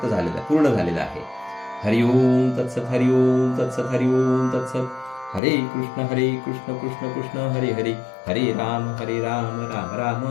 झालेलं, पूर्ण झालेलं आहे. हरिओम तत्सत, हरिओम तत्सत, हरिओम तत्सत. हरे कृष्ण कृष्ण कृष्ण हरे हरे, हरे राम राम राम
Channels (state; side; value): drops out; right; at 5.4 s